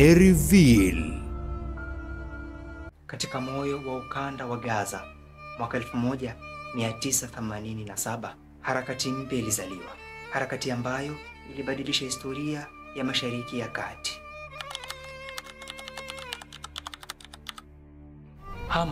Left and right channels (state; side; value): identical; both; correlation 1.00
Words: Reveal. Katika moyo wa ukanda wa Gaza mwaka 1987, harakati mpya ilizaliwa, harakati ambayo ilibadilisha historia ya Mashariki ya Kati.